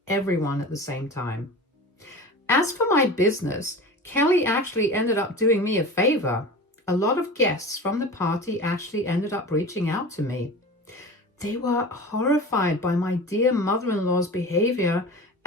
everyone at the same time. As for my business, Kelly actually ended up doing me a favor. A lot of guests from the party actually ended up reaching out to me. They were horrified by my dear mother-in-law's behavior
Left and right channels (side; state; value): both; normal; correlation 0.34